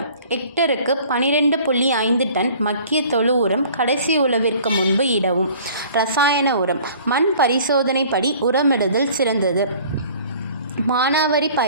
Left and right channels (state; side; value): inverted; both; correlation -0.50